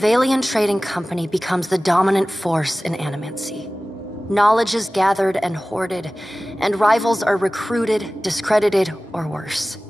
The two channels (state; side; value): normal; both; correlation 0.97